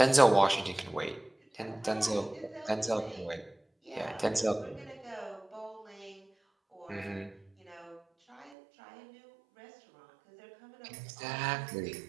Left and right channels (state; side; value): drops out; left; at 8.6 s